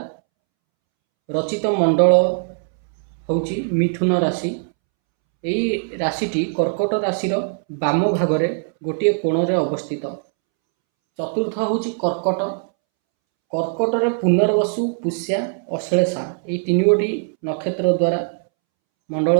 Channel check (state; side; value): silent; left; 65 dB below the other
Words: रचित मंडल होची मिथुन राशि। यही राशिटी कर्कट राशि बाम भागरे गोटे कोण रे अवस्थित। चतुर्थ होची कर्कट। कर्कट रे पुनर्वसु, पुष्या, अश्लेषा ये तीन गोटी नक्षत्र द्वारा